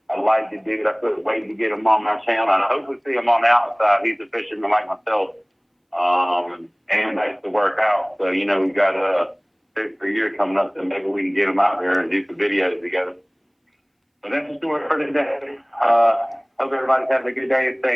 I like the dude. I couldn't wait to get him on my channel, and I hope we see him on the outside. He's a fisherman like myself, and likes to work out. So, we got a year coming up, so maybe we can get him out there and do some videos together. But that's the story for today. Hope everybody's having a good day and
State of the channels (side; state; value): both; identical; correlation 1.00